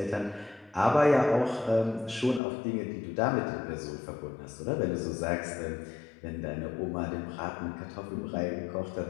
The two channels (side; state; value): right; drops out; at 2.4 s